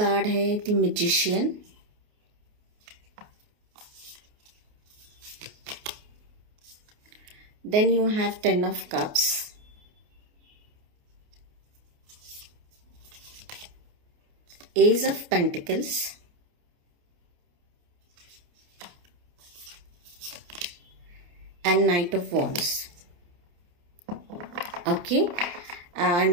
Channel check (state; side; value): late; left; 28 ms